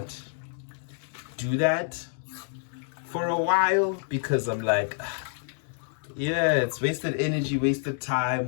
do that for a while because I'm like, yeah, it's wasted energy, wasted time,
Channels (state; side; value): silent; right; 59 dB below the other